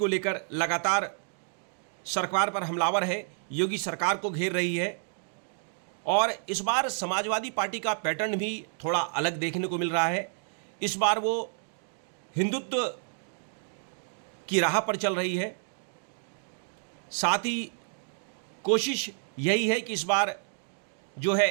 लेकर लगातार सरकार पर हमलावर है, योगी सरकार को घेर रही है और इस बार समाजवादी पार्टी का पैटर्न भी थोड़ा अलग देखने को मिल रहा है। इस बार वो हिंदुत्व की राह पर चल रही है। साथ ही कोशिश यही है कि इस बार जो है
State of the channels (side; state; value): left; silent; 57 dB below the other